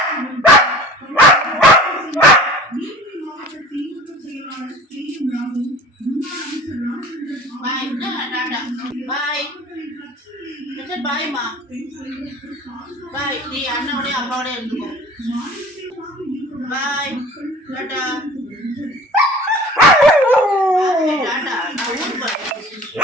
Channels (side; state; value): both; normal; correlation 0.44